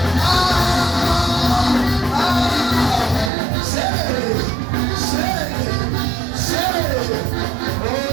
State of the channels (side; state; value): left; drops out; at 3.3 s